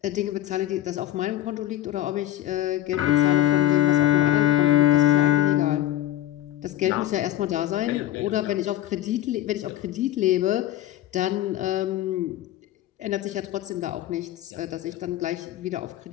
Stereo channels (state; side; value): quieter; right; 13.8 dB